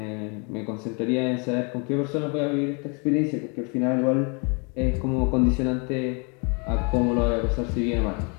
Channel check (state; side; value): quieter; right; 34.2 dB